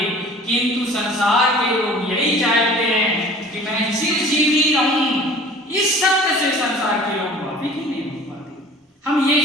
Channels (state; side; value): normal; both; correlation 0.46